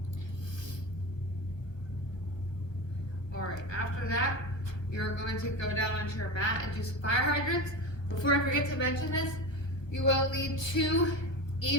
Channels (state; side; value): late; right; 1.4 ms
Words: All right, after that, you're going to go down onto your mat and do some fire hydrants. Before I forget to mention this, you will need 2